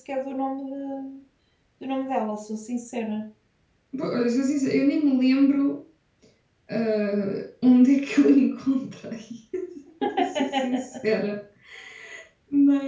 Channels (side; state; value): both; identical; correlation 1.00